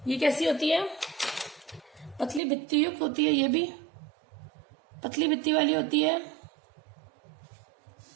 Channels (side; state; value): left; drops out; at 2.4 s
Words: ये कैसी होती है? पतली भित्ति युक्त होती है, ये भी पतली भित्ति वाली होती है,